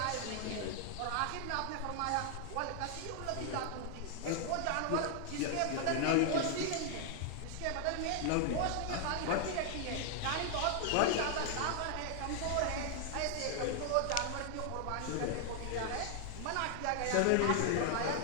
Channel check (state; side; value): different; both; correlation 0.00